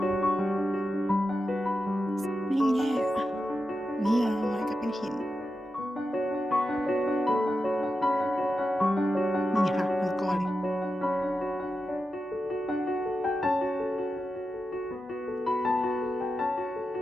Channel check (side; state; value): both; normal; correlation 0.90